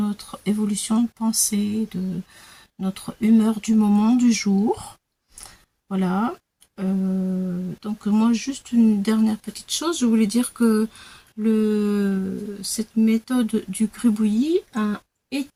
évolution de pensée, de notre humeur du moment, du jour. Voilà. Donc moi, juste une dernière petite chose. Je voulais dire que cette méthode du gribouillis a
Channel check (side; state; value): both; identical; correlation 1.00